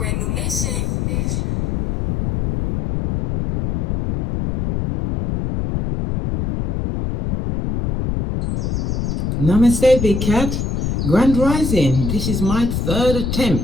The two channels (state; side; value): noise; left; rumble, 1 dB below the sound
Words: new nation. Namaste, big cat. Grand rising. This is my third